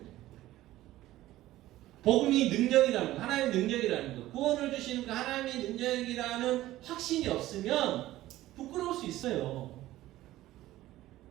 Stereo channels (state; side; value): quieter; left; 15.5 dB